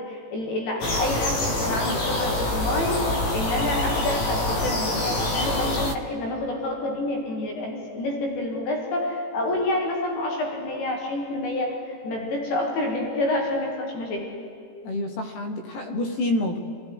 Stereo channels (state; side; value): late; right; 18 ms